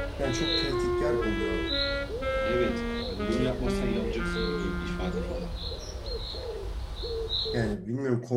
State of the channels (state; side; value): identical; both; correlation 1.00